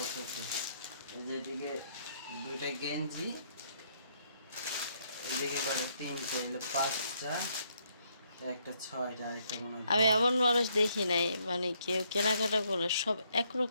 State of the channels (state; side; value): inverted; both; correlation -0.71